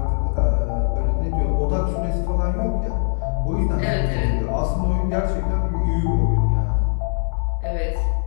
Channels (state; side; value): silent; right; 65 dB below the other